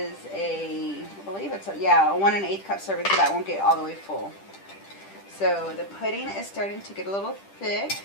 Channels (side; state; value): right; late; 10 ms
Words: I believe it's a 1 1/8 cup serving, so that won't get all the way full. So the pudding is starting to get a little thick.